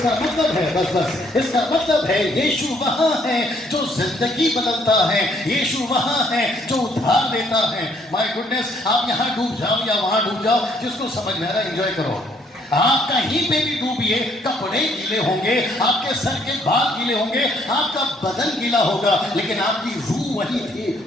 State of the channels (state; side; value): normal; both; correlation 0.66